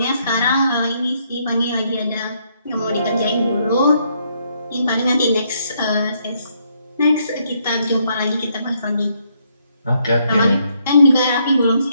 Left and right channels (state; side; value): inverted; both; correlation -0.73